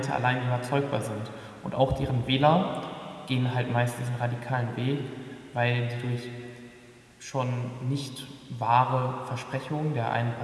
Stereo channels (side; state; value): both; identical; correlation 1.00